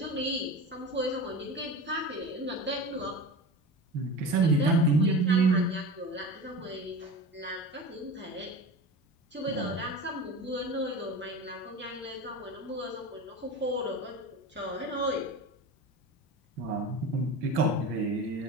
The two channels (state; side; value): normal; both; correlation 0.31